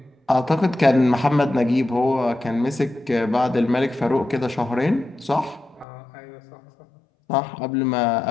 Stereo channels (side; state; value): right; drops out; at 5.9 s